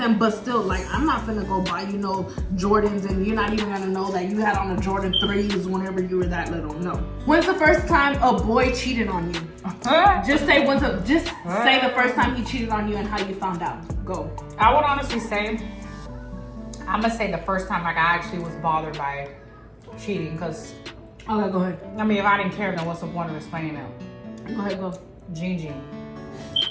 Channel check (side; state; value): both; identical; correlation 1.00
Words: but still, like, I'm not finna go buy, you know, Jordans, and you're not even gonna know that you had on the Jordan 3s whenever you were that little. No. When's the first time a boy cheated on you? Just say say the first time he cheated on you and how you found out. Go. I would honestly say, I'm gonna say the first time like I actually was bothered by cheating, because Okay, go ahead. I mean, if I didn't care, then what's the point of explaining it? Go ahead, go. Gene.